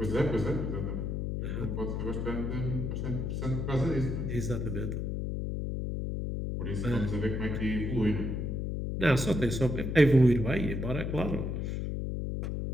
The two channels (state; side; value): noise; left; hum, 2 dB below the sound